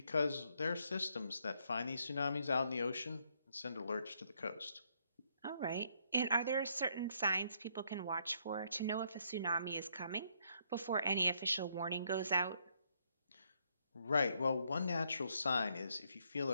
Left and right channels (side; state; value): both; inverted; correlation -0.72